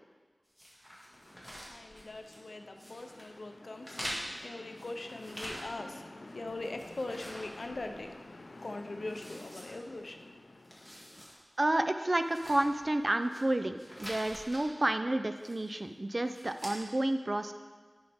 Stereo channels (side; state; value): both; normal; correlation 0.98